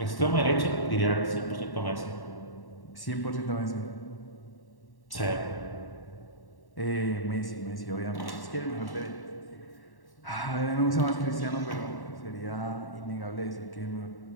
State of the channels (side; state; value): right; late; 1.1 ms